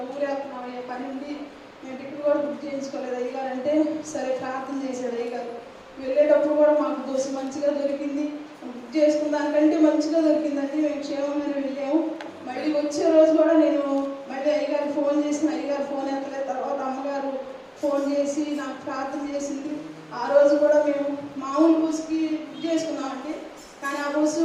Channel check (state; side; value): identical; both; correlation 1.00